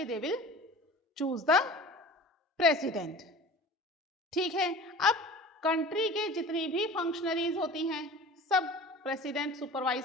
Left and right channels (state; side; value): normal; both; correlation 0.40